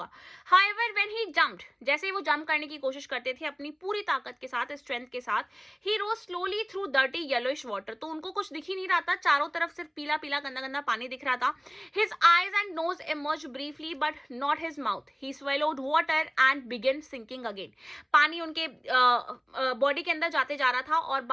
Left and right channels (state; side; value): identical; both; correlation 1.00